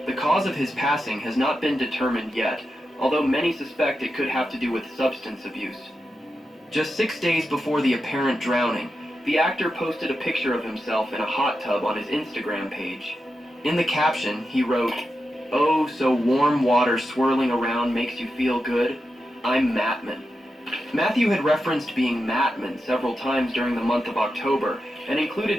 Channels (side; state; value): both; normal; correlation 0.89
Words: The cause of his passing has not been determined yet, although many suspect it could have to do with substance abuse. Just 6 days before the apparent drowning, the actor posted a picture of himself in a hot tub on his Instagram page. In the caption, he wrote, "Oh, so warm water swirling around makes you feel good? I'm Mattman." Matthew had referenced being Mattman several times during the month of October and